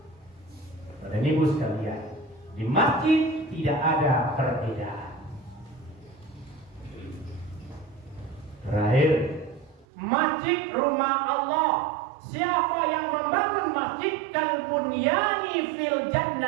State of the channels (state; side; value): drops out; left; at 9.9 s